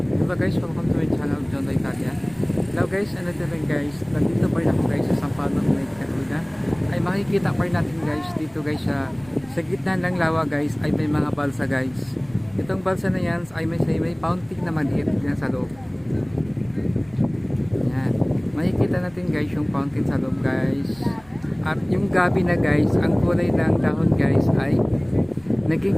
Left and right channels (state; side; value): noise; right; rumble, 25 dB below the sound